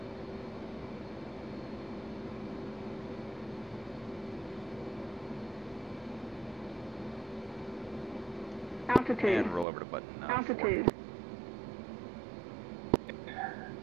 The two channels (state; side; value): drops out; left; at 9.7 s